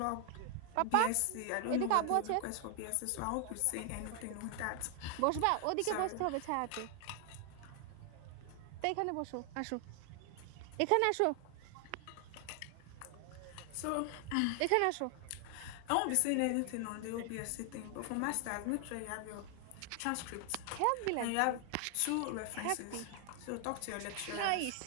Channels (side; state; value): both; different; correlation 0.00